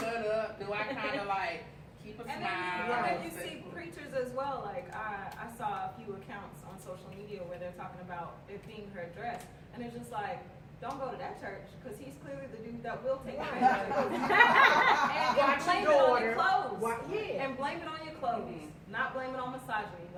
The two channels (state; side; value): identical; both; correlation 1.00